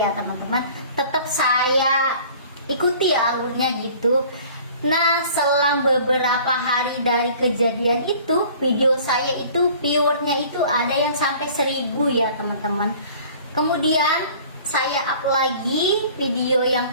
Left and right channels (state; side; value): inverted; both; correlation -0.49